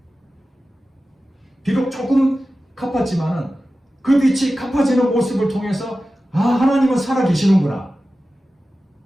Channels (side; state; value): both; normal; correlation 0.94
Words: 비록 조금 갚았지만은 그 빚이 갚아지는 모습을 통해서 아, 하나님은 살아계시는구나.